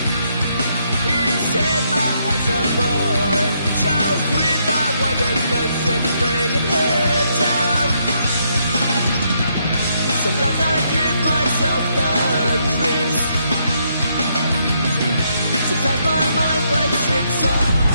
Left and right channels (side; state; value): both; inverted; correlation -0.75